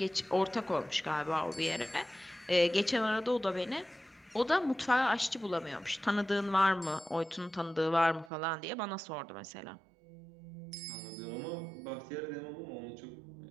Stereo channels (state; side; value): drops out; left; at 8.3 s